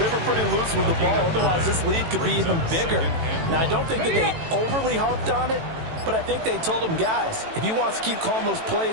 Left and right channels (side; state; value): left; late; 18 ms